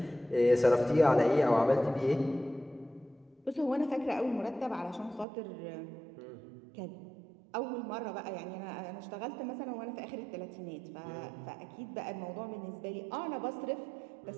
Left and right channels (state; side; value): drops out; left; at 5.2 s